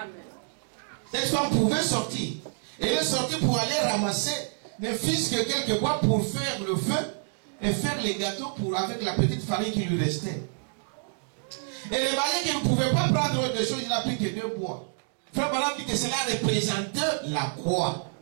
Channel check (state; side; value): silent; left; digital silence